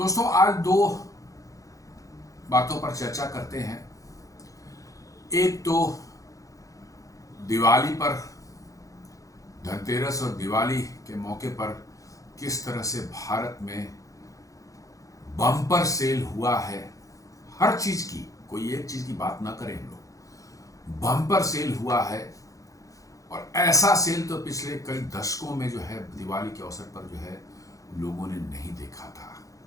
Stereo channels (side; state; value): right; late; 0.16 ms